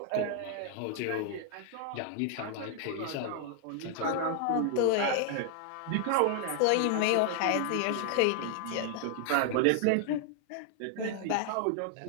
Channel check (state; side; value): different; both; correlation 0.00